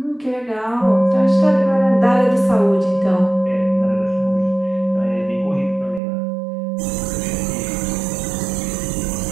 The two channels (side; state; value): left; drops out; at 6.0 s